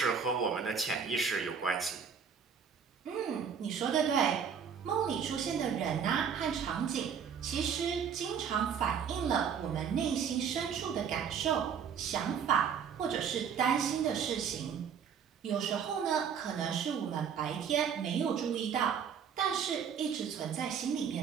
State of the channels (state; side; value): quieter; left; 7.2 dB